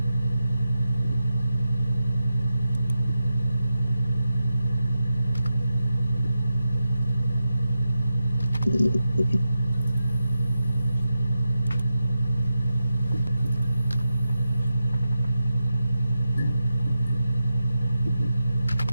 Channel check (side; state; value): both; inverted; correlation -0.91